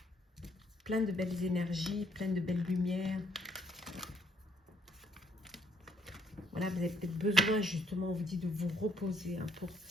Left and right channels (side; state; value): both; normal; correlation 0.68